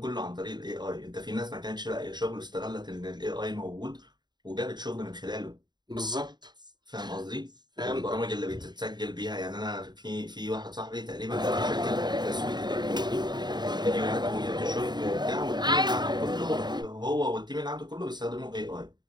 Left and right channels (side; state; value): left; late; 0.21 ms